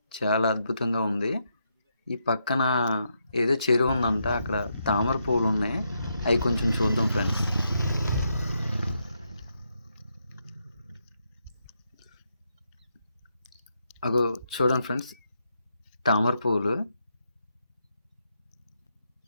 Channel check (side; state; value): both; inverted; correlation -0.80